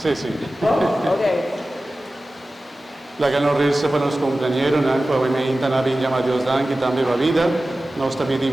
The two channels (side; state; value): both; normal; correlation 0.96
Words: sí. Ok. La que nos resta para los compañeros, obviamente, la llama Dios dan que también va vida. Nos